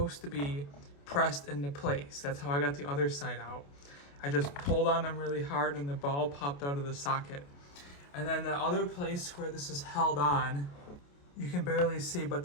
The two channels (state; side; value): late; right; 28 ms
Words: to be pressed into place. That's how I got the other side out. I just pulled on them really hard and the ball popped out of the socket. And then the other place where this is held on, you can barely see, but